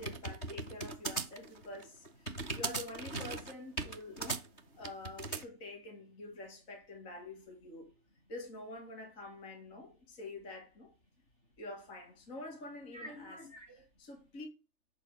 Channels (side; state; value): right; late; 3.2 ms